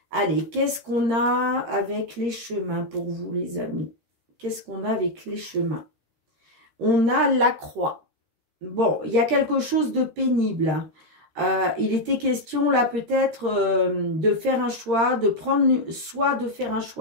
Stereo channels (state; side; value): late; left; 13 ms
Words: allez, qu'est-ce qu'on a avec les chemins pour vous les amis? Qu'est-ce qu'on a avec les chemins? On a la croix. Bon, il y a quelque chose de pénible. Il était question là peut-être de faire un choix, de prendre soit de faire un